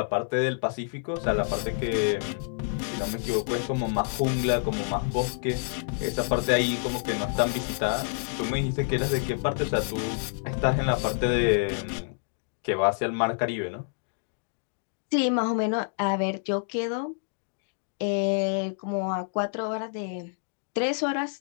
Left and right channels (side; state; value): right; silent; digital silence